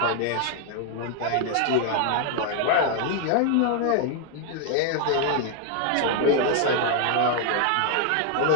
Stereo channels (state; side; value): different; both; correlation 0.00